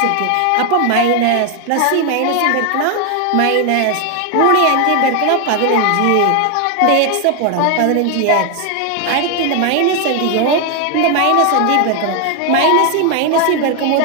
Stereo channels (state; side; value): different; both; correlation 0.01